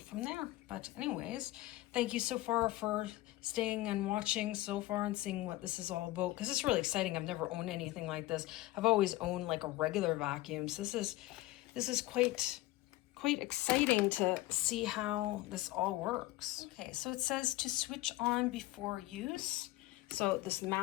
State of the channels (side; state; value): right; quieter; 17.7 dB